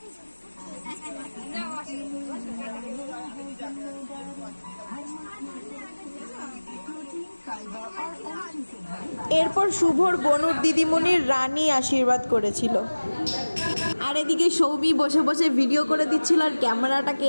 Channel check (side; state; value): both; inverted; correlation -1.00